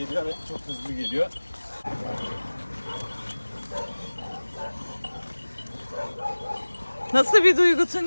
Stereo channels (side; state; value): both; inverted; correlation -1.00